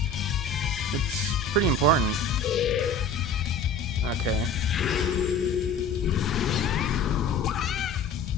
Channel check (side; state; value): right; quieter; 3.8 dB